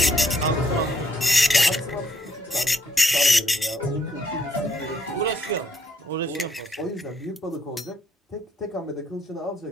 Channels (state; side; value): normal; both; correlation 0.71